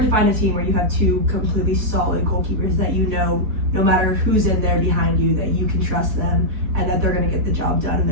to find a team where you have 2 completely solid goalkeepers that no matter who's in there behind you, that you can trust them and that they're going to get the job done and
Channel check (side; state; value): left; late; 4.2 ms